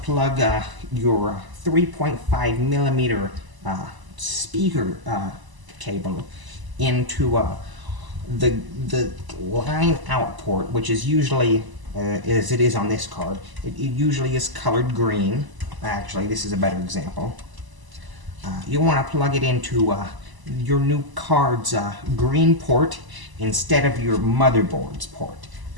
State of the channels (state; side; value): late; left; 1.0 ms